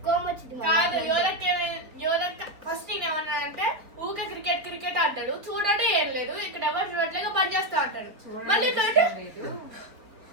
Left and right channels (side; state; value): left; late; 4.0 ms